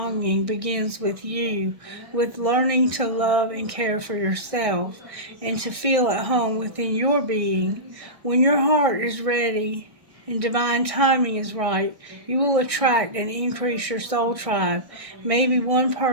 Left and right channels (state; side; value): late; left; 1.6 ms